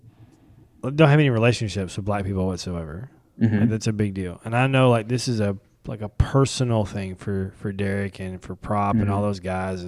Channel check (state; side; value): identical; both; correlation 1.00